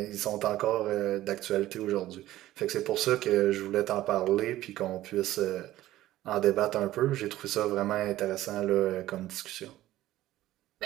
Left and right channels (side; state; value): left; quieter; 14.9 dB